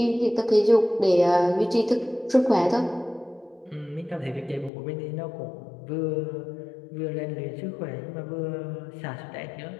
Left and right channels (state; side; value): drops out; right; at 4.7 s